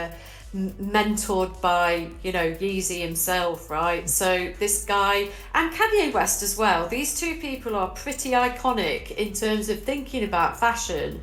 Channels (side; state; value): both; identical; correlation 1.00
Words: mentored by, Yeezy himself, right? So this guy and Kanye West as well. These two people are pretty iconic in terms of thinking about fashion